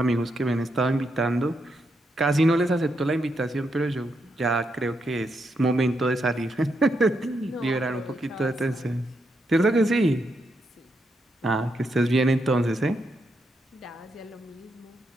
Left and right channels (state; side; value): normal; both; correlation 0.81